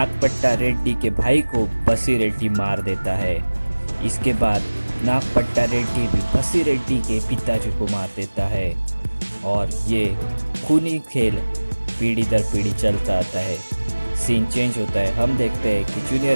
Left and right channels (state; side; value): inverted; both; correlation -1.00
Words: रेड्डी के भाई को बसी रेड्डी मार देता है। इसके बाद नागपट्टा रेड्डी भी बसी रेड्डी के पिताजी को मार देता है और ये खूनी खेल पीढ़ी दर पीढ़ी चलता आता है। सीन चेंज होता है। हम देखते हैं कि